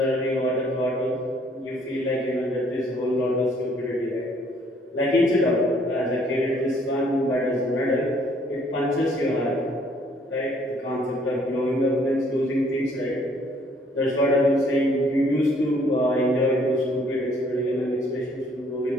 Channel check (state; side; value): normal; both; correlation 0.63